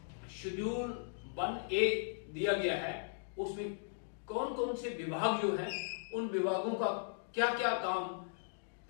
शेड्यूल 1A दिया गया है उसमें कौन कौन से विभाग जो हैं उन विभागों का क्या क्या काम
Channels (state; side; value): silent; right; digital silence